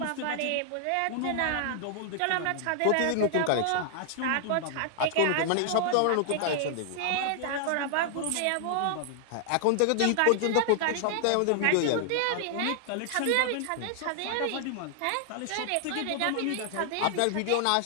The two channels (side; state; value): both; different; correlation -0.01